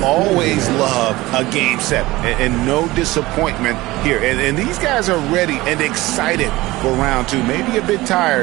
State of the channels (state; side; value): quieter; left; 19.3 dB